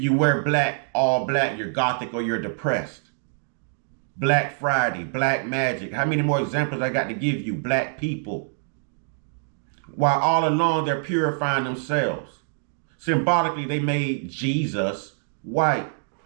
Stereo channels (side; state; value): left; silent; digital silence